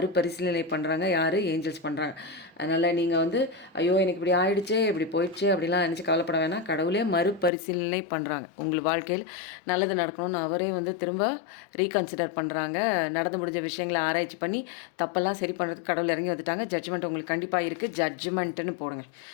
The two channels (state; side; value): drops out; right; at 7.5 s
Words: பண்ணுறாங்க. யார்? ஏஞ்சல்ஸ் பண்ணுறாங்க. அதனால் நீங்கள் வந்து ஐயோ எனக்கு இப்படி ஆயிடுச்சே, இப்படி போயிடுச்சே அப்படிலாம் நினச்சி கவலைப்பட வேணாம். கடவுளே மறுபரிசீலனை பண்ணுறாங்க. உங்கள் வாழ்க்கையில் நல்லது நடக்கணும்னு அவரே வந்து திரும்ப ரீகன்சிடர் பண்ணுறாங்க. நடந்து முடிஞ்ச விஷயங்களை ஆராய்ச்சி பண்ணி தப்பெல்லாம் சரி பண்ணுறதுக்கு கடவுள் இறங்கி வந்துட்டாங்க. ஜட்ஜ்மெண்ட் உங்களுக்கு கண்டிப்பாக இருக்குது. ஜட்ஜ்மெண்ட்டுன்னு போடுங்க.